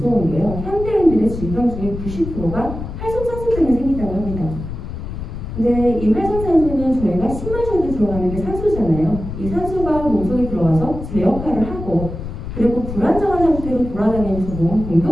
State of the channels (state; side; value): noise; left; rumble, 8 dB below the sound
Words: 게요. 현대인들의 질병 중에 90%가 활성산소 때문에 생긴다고 합니다. 근데 이 활성산소는 저희가 숨 마셔도 들어가는 게 산소잖아요. 이 산소가 몸속에 들어와서 제 역할을 하고 그리고 불안정한 상태로 돌아다니면서 몸을